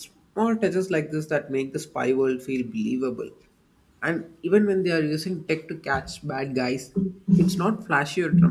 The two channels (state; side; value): identical; both; correlation 1.00